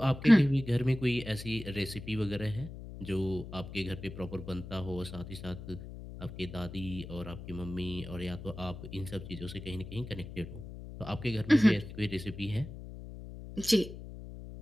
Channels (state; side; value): noise; left; hum, 11 dB below the sound